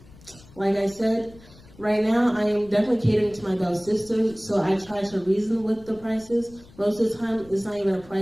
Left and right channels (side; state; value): left; noise; rumble, 23 dB below the sound